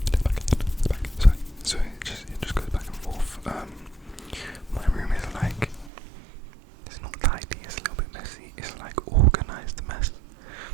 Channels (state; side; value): drops out; left; at 5.9 s